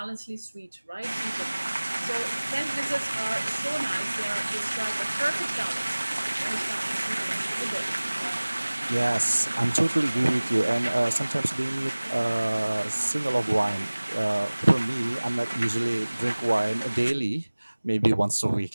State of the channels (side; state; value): both; inverted; correlation -1.00